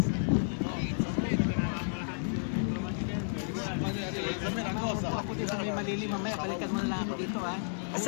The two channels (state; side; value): silent; right; digital silence